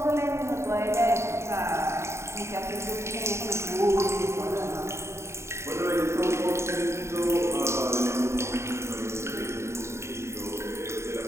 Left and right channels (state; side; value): late; left; 0.13 ms